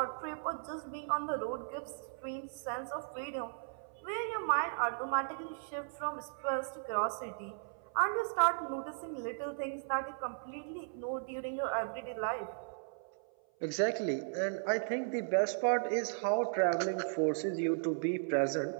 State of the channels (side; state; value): left; silent; 54 dB below the other